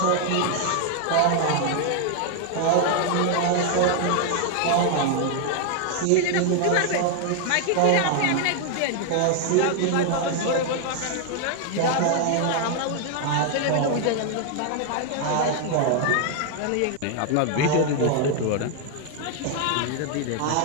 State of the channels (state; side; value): different; both; correlation 0.00